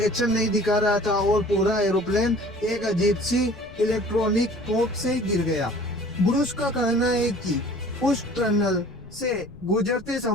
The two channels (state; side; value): noise; left; rumble, 20 dB below the sound